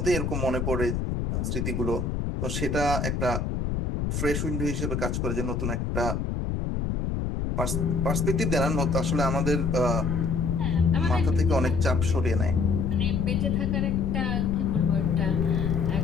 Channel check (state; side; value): noise; left; rumble, 1 dB below the sound